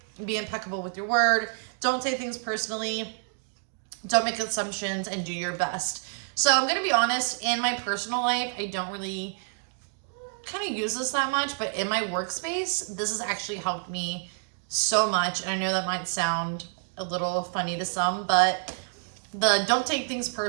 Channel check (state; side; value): silent; left; digital silence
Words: Be impeccable with your word. Don't take things personally. Don't make assumptions, and do your best. So I'm going to be honest, in my personal life, I don't really kind of use this that much, but in my workspace, this has actually helped me so much. And I know that might sound a little funny to some, but the don't take things